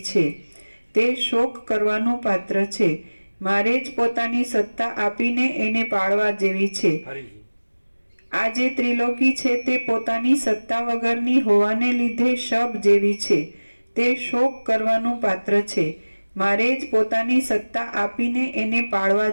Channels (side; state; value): both; inverted; correlation -1.00